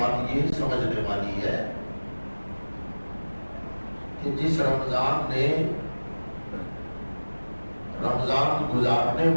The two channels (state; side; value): inverted; both; correlation -1.00